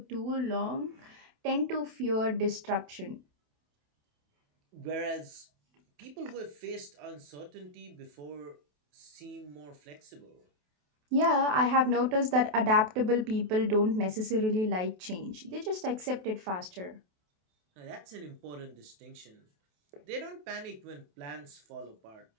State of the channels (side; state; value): left; late; 28 ms